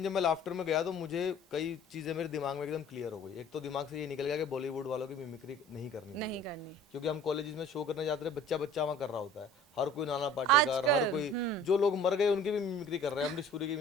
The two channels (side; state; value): both; normal; correlation 0.48